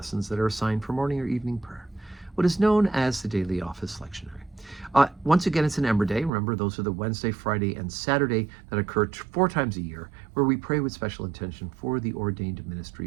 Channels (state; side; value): drops out; left; at 6.3 s